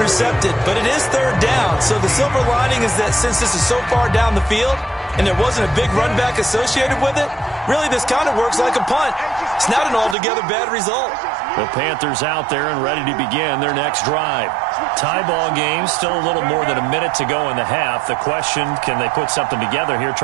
but it is third down. So the silver lining is that since this is so far down the field and there wasn't a big run back associated with it, really this kind of works like a punt. It's not an altogether bad result. The Panthers out there and ready to begin their next drive. Tie ball game, still a little more than a minute to go in the half. The question, can they put something together here,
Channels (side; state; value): left; drops out; at 10.2 s